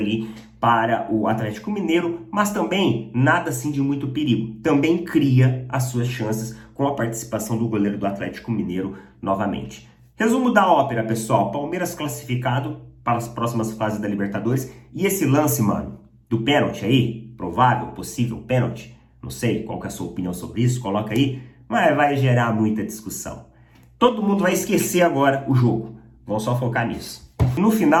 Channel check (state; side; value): identical; both; correlation 1.00